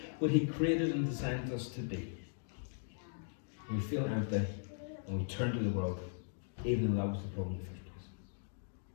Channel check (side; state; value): right; silent; digital silence